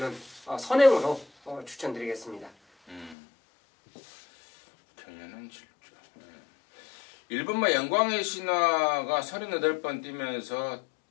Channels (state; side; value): drops out; right; at 3.2 s